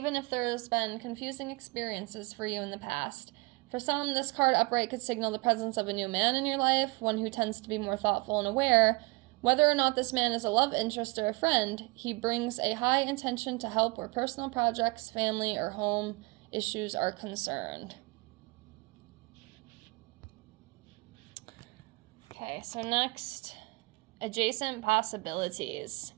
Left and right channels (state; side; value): quieter; left; 25.3 dB